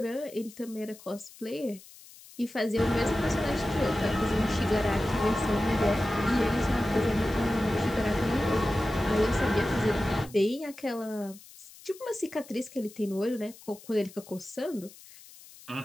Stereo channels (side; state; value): left; noise; hiss, 21 dB below the sound